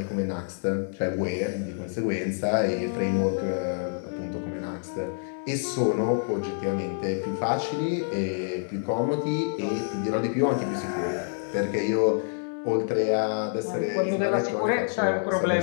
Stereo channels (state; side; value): silent; right; digital silence